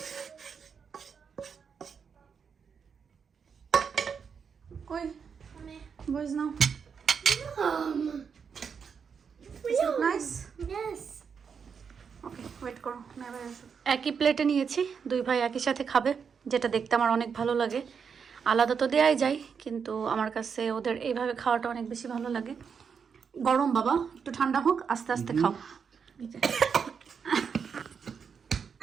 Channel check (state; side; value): quieter; left; 6.4 dB